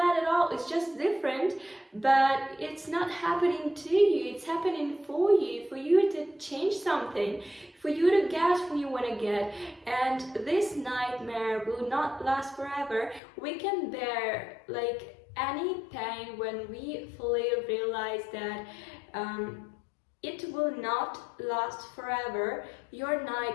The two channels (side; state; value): right; drops out; at 13.2 s